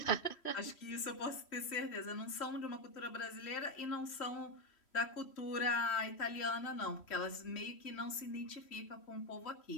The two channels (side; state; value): right; late; 3.1 ms